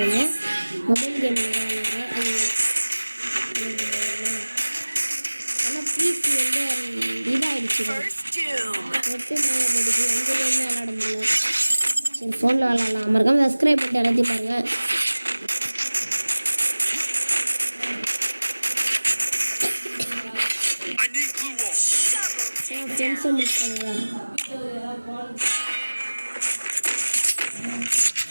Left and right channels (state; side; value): inverted; both; correlation -1.00